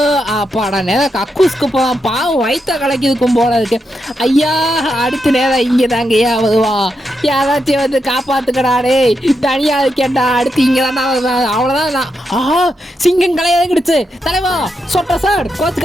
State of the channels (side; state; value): both; normal; correlation 0.84